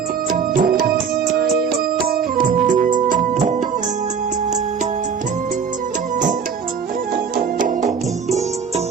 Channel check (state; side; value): quieter; left; 6.6 dB